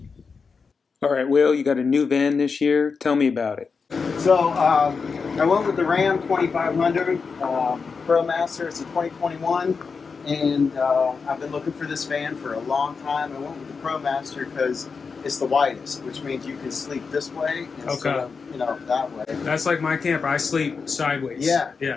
Alright, Will, you got a new van this year. Tell me about it. So I went with the Ram 2500 ProMaster. It's a 2021, and I've been looking for this van for a long time. I went with the ProMaster because it's the widest, which means you can sleep this way instead of, that way. That's like my camper. I sleep sideways. Yeah.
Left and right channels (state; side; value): quieter; right; 5.1 dB